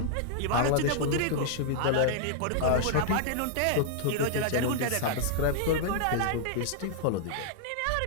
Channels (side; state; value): both; different; correlation -0.01